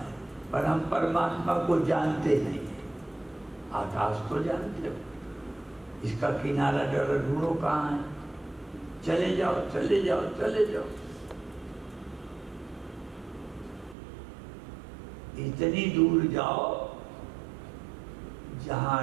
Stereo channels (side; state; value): left; drops out; at 14.0 s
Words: पर हम परमात्मा को जानते नहीं है। आकाश को जानते हो, इसका किनारा जरा ढूंढो कहाँ है। चले जाओ, चले जाओ, चले जाओ। इतनी दूर जाओ